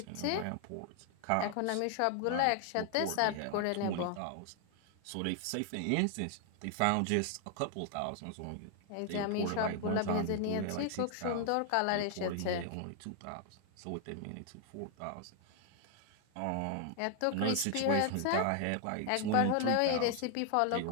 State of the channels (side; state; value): both; different; correlation 0.00